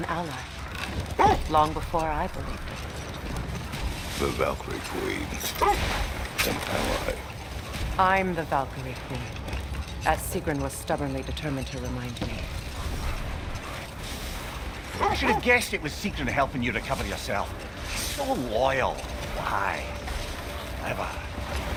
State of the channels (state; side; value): identical; both; correlation 1.00